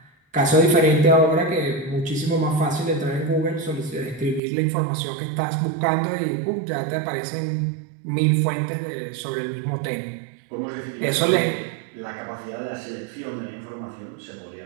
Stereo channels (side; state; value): left; drops out; at 4.4 s